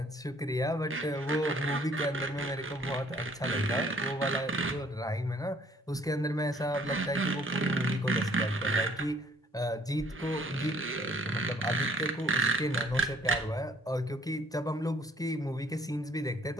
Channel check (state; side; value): normal; both; correlation 0.62